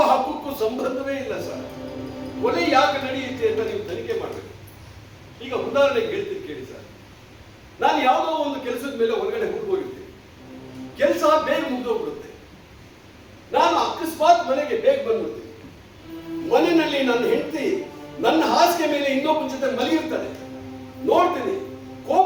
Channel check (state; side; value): identical; both; correlation 1.00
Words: ಹಕ್ಕಕ್ಕೂ ಸಂಬಂಧವೇ ಇಲ್ಲ ಸರ್. ಕೊಲೆ ಯಾಕೆ ನಡೆಯುತ್ತೆ ಅಂತ ನೀವು ತನಿಖೆ ಮಾಡಬೇಕು. ಈಗ ಉದಾಹರಣೆಗೆ ಹೇಳ್ತೀನಿ ಕೇಳಿ ಸರ್. ನಾನು ಯಾವುದೋ ಒಂದು ಕೆಲಸದ ಮೇಲೆ ಹೊರಗಡೆ ಹೋಗಿರ್ತೀನಿ. ಕೆಲಸ ಬೇಗ ಮುಗಿದೋಗ್ಬಿಡುತ್ತೆ. ನಾನು ಅಕಸ್ಮಾತ್ ಮನೆಗೆ ಬೇಗ ಬಂದ್ಬಿಡ್ತೀನಿ. ಮನೆಯಲ್ಲಿ ನನ್ನ ಹೆಂಡತಿ ನನ್ನ ಹಾಸಿಗೆ ಮೇಲೆ ಇನ್ನೊಬ್ಬನ ಜೊತೆ ಮಲಗಿರ್ತಾನೆ. ನೋಡ್ತೀನಿ,